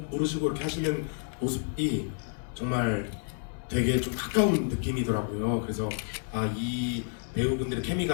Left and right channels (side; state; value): right; silent; digital silence